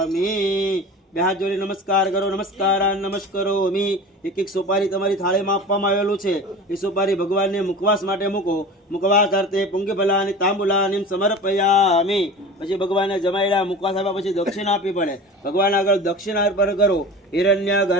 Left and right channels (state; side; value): normal; both; correlation 0.35